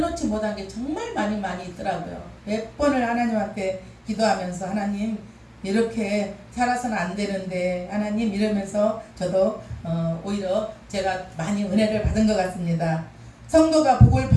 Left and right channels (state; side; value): identical; both; correlation 1.00